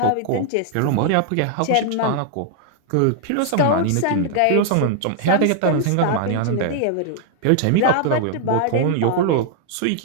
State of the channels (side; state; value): both; different; correlation 0.00